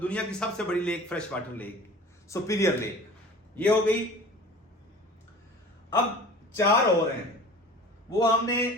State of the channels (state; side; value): normal; both; correlation 0.42